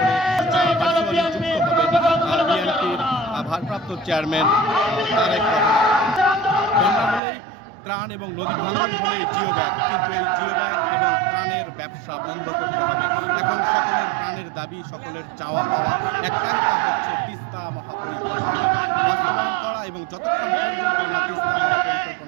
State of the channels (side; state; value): left; drops out; at 7.2 s